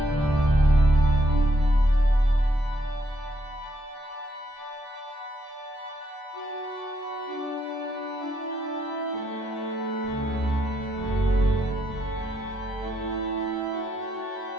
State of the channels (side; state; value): both; normal; correlation 0.74